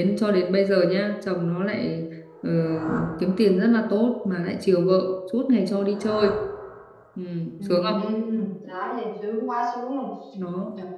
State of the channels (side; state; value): both; identical; correlation 1.00